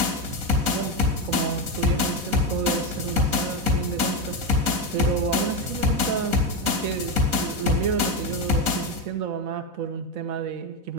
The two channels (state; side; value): late; left; 4.0 ms